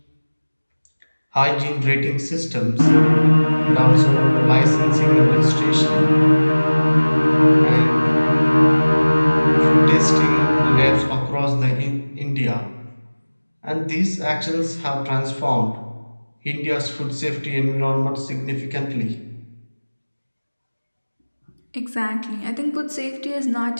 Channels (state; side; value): inverted; both; correlation -1.00